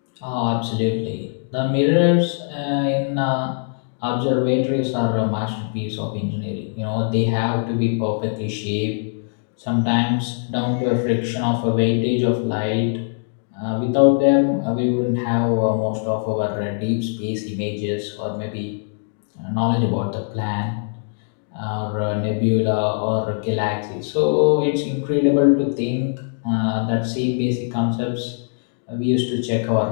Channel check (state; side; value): silent; right; digital silence